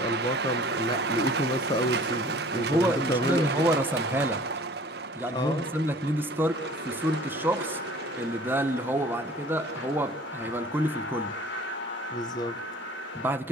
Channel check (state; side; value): normal; both; correlation 0.48